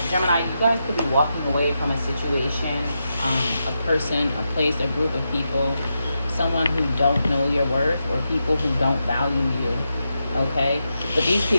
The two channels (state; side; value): inverted; both; correlation -0.86